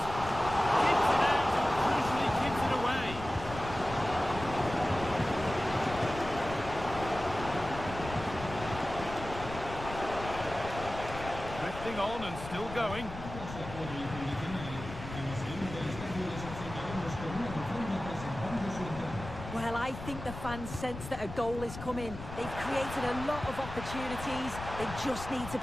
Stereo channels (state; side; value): noise; left; rumble, 10 dB below the sound